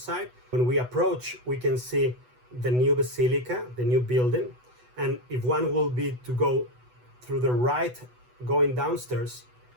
When we approach, we can see the new basilica, the new building. And if one will be to go through the right, going downstairs,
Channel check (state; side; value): late; left; 8.1 ms